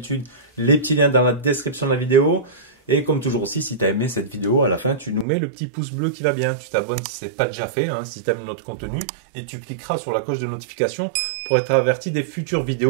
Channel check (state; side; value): drops out; left; at 5.2 s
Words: les petits liens dans la description de la vidéo. Et comme toujours aussi, si tu as aimé cette vidéo, à la fin, tu nous mets le petit pouce bleu qui va bien. Tu t'abonnes si ce n'est pas déjà fait, si tu aimes notre contenu. Et tu cliqueras sur la cloche de notification pour être averti des futures